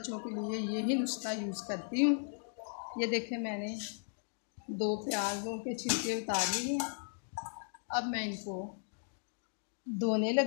के लिए यही नुस्खा यूज़ करती हूँ। ये देखें, मैंने 2 प्याज़ों के छिलके उतार लिए। अब मैं इनको धोने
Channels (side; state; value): right; silent; digital silence